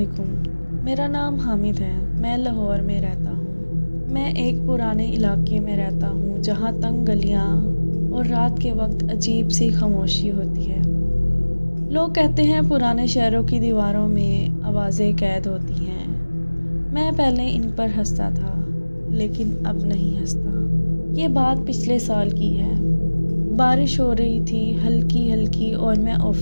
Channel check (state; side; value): inverted; both; correlation -1.00